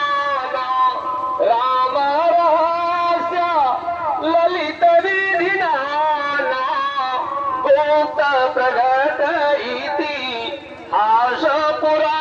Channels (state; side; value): identical; both; correlation 1.00